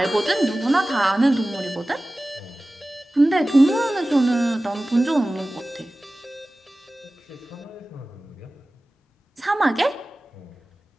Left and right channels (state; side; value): normal; both; correlation 0.97